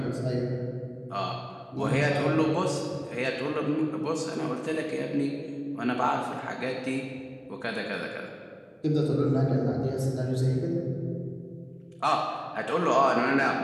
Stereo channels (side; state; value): both; identical; correlation 1.00